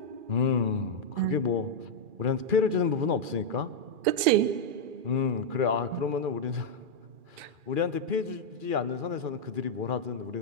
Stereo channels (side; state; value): left; late; 2.4 ms